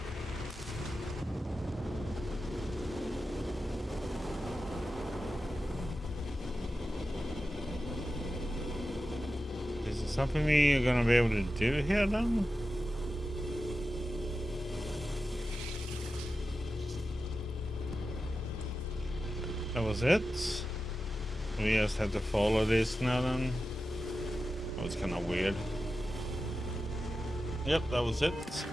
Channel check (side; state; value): both; normal; correlation 0.92